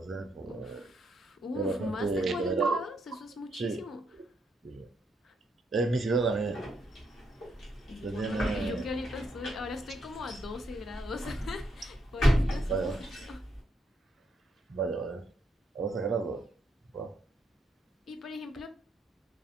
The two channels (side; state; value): both; normal; correlation 0.77